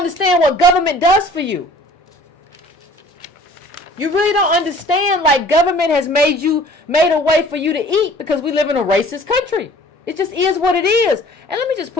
what government does for you. You really don't understand, like, government has made a way for you to eat because we live in a racist country. It just is what it is. And let me just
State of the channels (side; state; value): both; normal; correlation 0.50